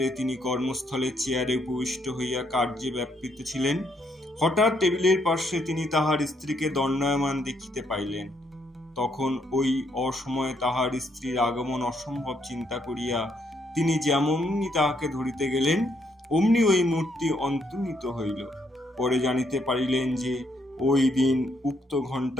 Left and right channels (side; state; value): both; normal; correlation 0.73